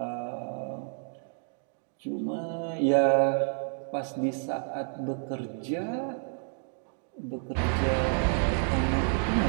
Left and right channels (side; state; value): left; silent; 58 dB below the other